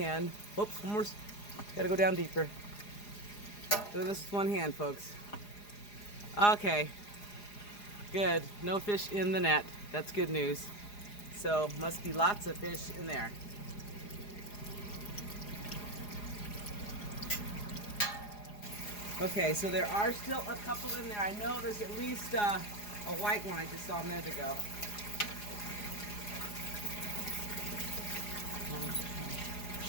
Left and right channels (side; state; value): right; late; 4.9 ms